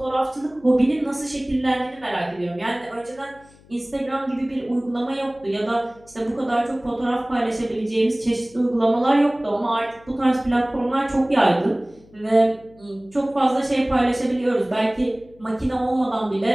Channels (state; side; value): noise; left; hum, 26 dB below the sound